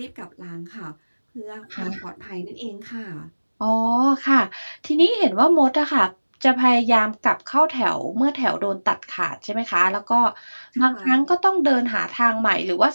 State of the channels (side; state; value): both; inverted; correlation -1.00